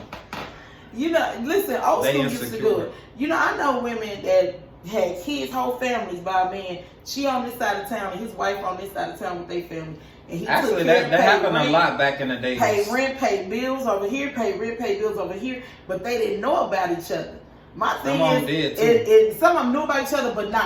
Listen, old school used to do it. I know women that had kids, whole families by a man She on this side of town and his wife on this side of town with their family. And he Actually, took care, that happened rent, a lot back in the days. Pay rent, pay bills over here, pay rent, pay bills over here, but they didn't know about each other. My thing is, some of them knew about each other, but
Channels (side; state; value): both; identical; correlation 1.00